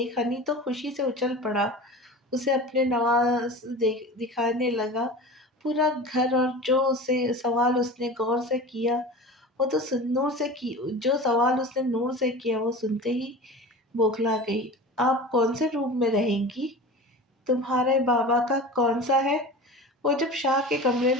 ہنی تو خوشی سے اچھل پڑا، اسے اپنے نواز دکھانے لگا۔ پورا گھر اور جو سوال اس نے نور سے کیا وہ سنتے ہی بوکھلا گئی۔ آپ کون سے روم میں رہیں گی؟ تمہارے بابا کا کون سا ہے؟ وہ جب شاہ کے کمرے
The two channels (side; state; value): both; normal; correlation 0.34